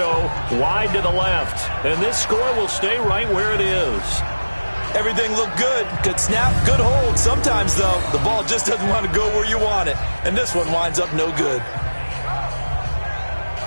wide to the left. And this score will stay right where it is. Everything looked good. Good snap, good hold. Sometimes, though, the ball just doesn't want to go where you want it. And this one winds up no good.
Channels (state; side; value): inverted; both; correlation -1.00